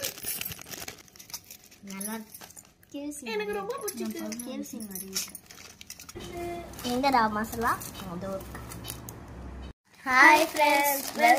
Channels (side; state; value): both; identical; correlation 1.00